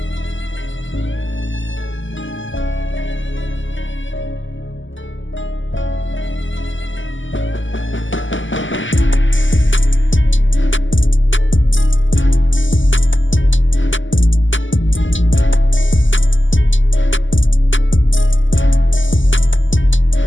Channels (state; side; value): late; right; 0.56 ms